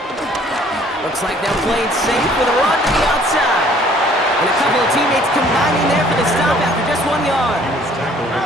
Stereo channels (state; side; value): normal; both; correlation 0.57